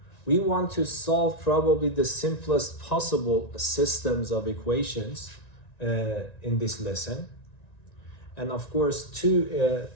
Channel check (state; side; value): late; right; 1.9 ms